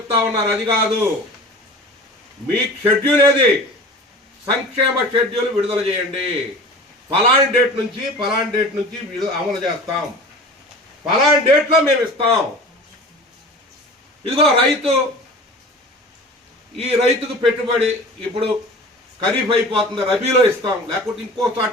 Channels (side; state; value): both; normal; correlation 0.38